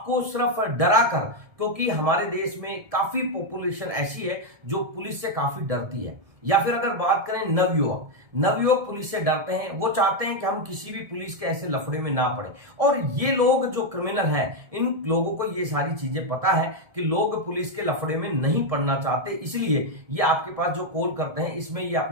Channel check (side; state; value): left; late; 1.7 ms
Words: सिर्फ डरा कर, क्योंकि हमारे देश में काफी पॉपुलेशन ऐसी है जो पुलिस से काफी डरती है। या फिर अगर बात करें नवयुवक पुलिस से डरते हैं, वो चाहते हैं कि हम किसी भी पुलिस के ऐसे लफड़े में ना पड़े। और ये लोग जो क्रिमिनल हैं इन लोगों को ये सारी चीजें पता है कि लोग पुलिस के लफड़े में नहीं पड़ना चाहते, इसलिए ये आपके पास जो कॉल करते हैं इसमें ये